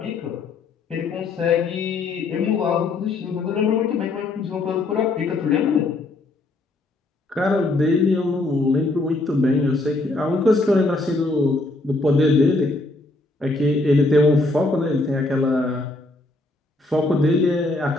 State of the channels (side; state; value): right; quieter; 3.0 dB